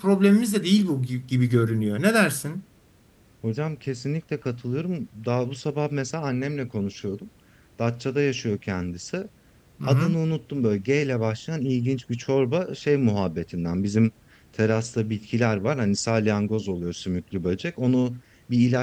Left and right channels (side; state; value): both; identical; correlation 1.00